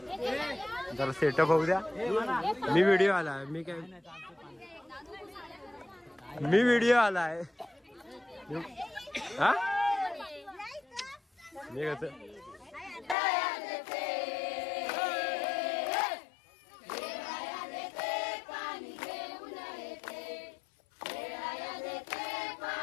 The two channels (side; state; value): right; drops out; at 13.2 s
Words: जरा सेटअप होऊ द्या. मी व्हिडिओ आला. मी व्हिडिओ आलाय. हा मी कसं